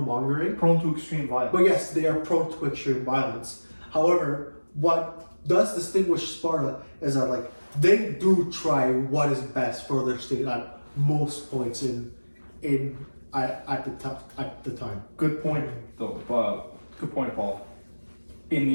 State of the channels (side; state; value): both; inverted; correlation -1.00